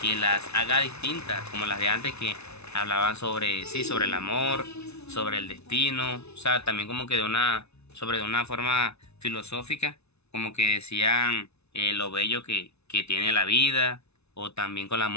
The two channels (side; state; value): right; late; 0.80 ms